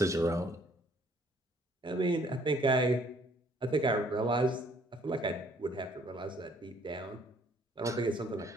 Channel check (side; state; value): both; normal; correlation 0.62